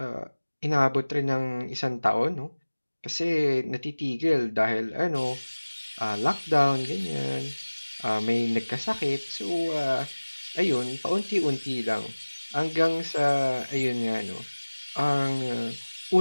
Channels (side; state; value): both; inverted; correlation -1.00